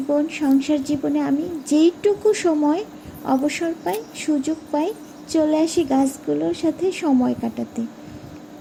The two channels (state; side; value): identical; both; correlation 1.00